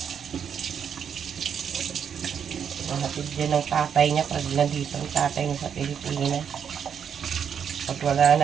Mahatid din ng tatay niya pag nandito ang tatay niya sa Pilipinas. Pag wala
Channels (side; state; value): left; quieter; 7.7 dB